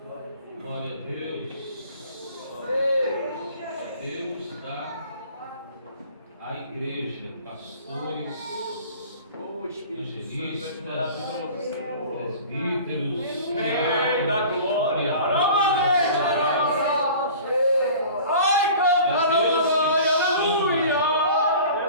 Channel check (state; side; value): inverted; both; correlation -0.43